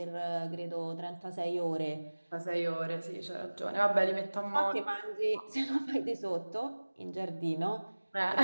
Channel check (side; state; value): both; inverted; correlation -1.00